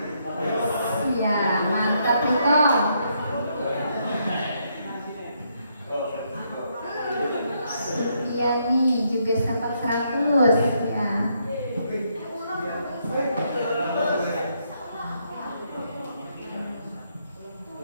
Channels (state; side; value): inverted; both; correlation -0.75